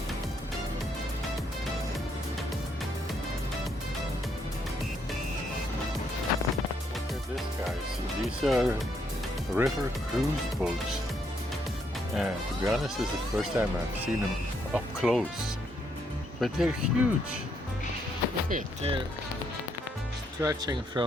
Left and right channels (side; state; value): both; normal; correlation 0.74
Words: at this, guys. These are river cruise boats. And to be honest, this is the first time I've seen them up close. But they're huge. Look at, they're stretching